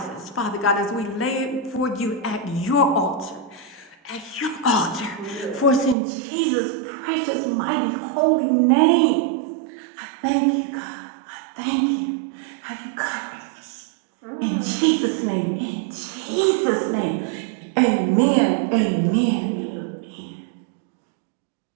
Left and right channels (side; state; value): left; drops out; at 6.0 s